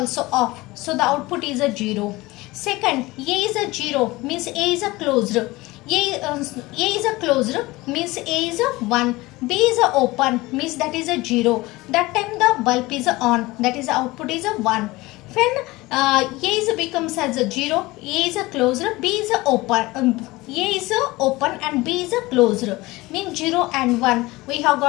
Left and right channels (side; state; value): right; quieter; 20.6 dB